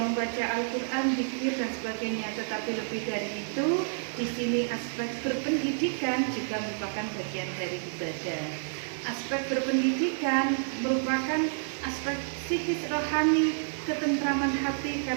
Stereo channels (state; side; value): silent; left; digital silence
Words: Al-Quran, zikir dan sebagainya, tetapi lebih dari itu, di sini aspek berpendidikan juga merupakan bagian dari ibadah. Aspek berpendidikan merupakan aspek psikis rohani, ketentraman hati